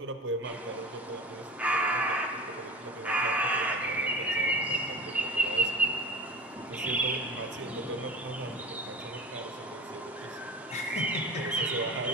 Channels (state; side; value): normal; both; correlation 0.34